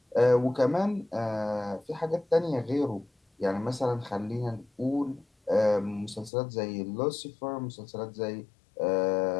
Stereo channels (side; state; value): right; drops out; at 6.3 s